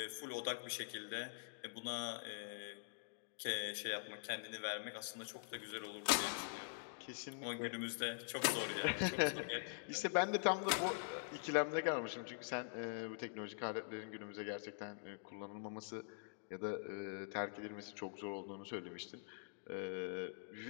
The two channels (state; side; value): silent; right; digital silence